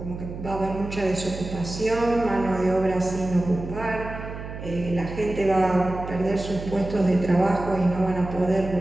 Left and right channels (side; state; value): right; noise; hum, 9 dB below the sound